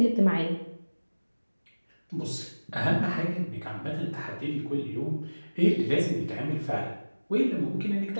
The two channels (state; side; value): inverted; both; correlation -1.00